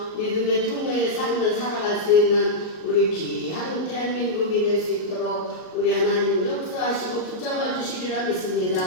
믿음의 통로의 삶을 살아갈 수 있는 우리 귀한 대한민국이 될 수 있도록 우리 하나님 역사하시고 붙잡아 주시리라 믿습니다.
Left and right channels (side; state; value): right; late; 38 ms